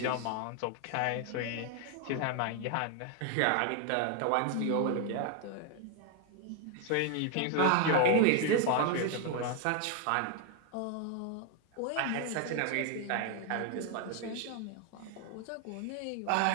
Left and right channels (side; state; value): both; different; correlation 0.00